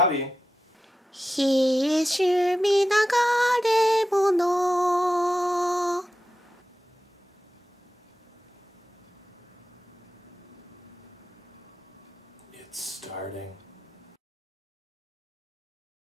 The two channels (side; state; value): both; normal; correlation 0.91